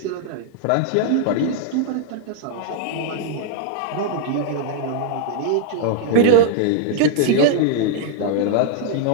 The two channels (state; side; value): different; both; correlation -0.01